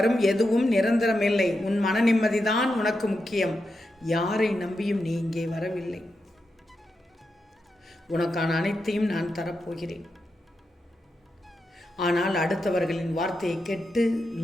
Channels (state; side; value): normal; both; correlation 0.87